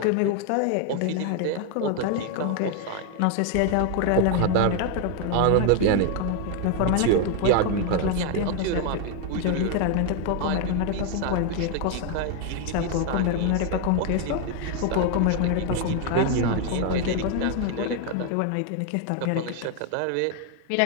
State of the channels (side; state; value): both; different; correlation 0.01